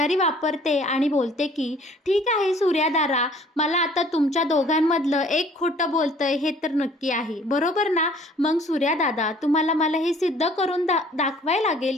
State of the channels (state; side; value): normal; both; correlation 0.55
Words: वापरते आणि बोलते की "ठीक आहे सूर्यादारा, मला आता तुमच्या दोघांमधलं एक खोटं बोलतंय हे तर नक्की आहे, बरोबर ना? मग सूर्यादादा तुम्हाला मला हे सिद्ध करून दाखवायला लागेल